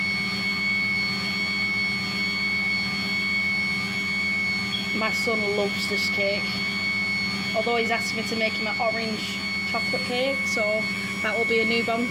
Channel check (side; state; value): both; identical; correlation 1.00